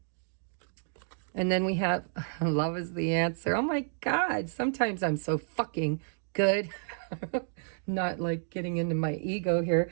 And then we have love is the answer. Oh my God, sometimes I'm so fucking good. Not like getting into my ego here,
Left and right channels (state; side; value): silent; left; digital silence